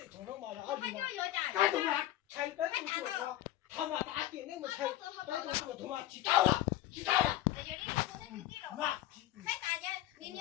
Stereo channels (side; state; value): right; quieter; 13.8 dB